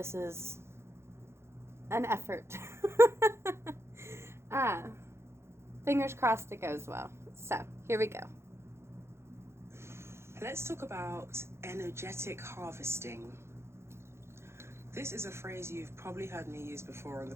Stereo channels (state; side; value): late; left; 0.13 ms